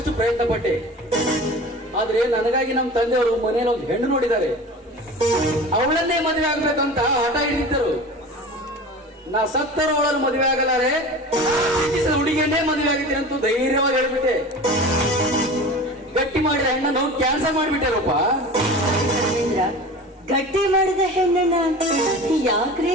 ಪ್ರಯತ್ನ ಪಟ್ಟೆ. ಆದ್ರೆ ನನಗಾಗಿ ನಮ್ಮ ತಂದೆಯವರು ಮನೆಯಲ್ಲಿ ಒಂದು ಹೆಣ್ಣು ನೋಡಿದ್ದಾರೆ. ಅವಳನ್ನೇ ಮದುವೆ ಆಗ್ಬೇಕಂತ ಹಠ ಹಿಡಿದಿದ್ದರು. ನಾ ಸತ್ತರು ಅವಳನ್ನು ಮದುವೆ ಆಗಲಾರೆ, ಹುಡುಗಿಯನ್ನೇ ಮದುವೆ ಆಗಿದ್ದೀನಿ ಅಂತ ಧೈರ್ಯವಾಗಿ ಹೇಳ್ಬಿಟ್ಟೆ. ಗಟ್ಟಿ ಮಾಡಿದ ಹೆಣ್ಣನ್ನು ಕ್ಯಾನ್ಸಲ್ ಮಾಡಿಬಿಟ್ಟೆ ರೂಪ. ಗಟ್ಟಿ ಮಾಡಿದ ಹೆಣ್ಣನ್ನ ಯಾಕ್ರಿ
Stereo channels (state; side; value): normal; both; correlation 0.36